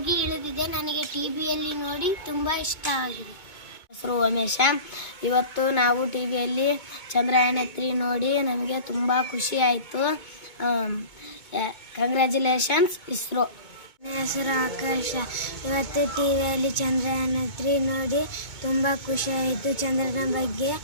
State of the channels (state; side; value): late; right; 2.2 ms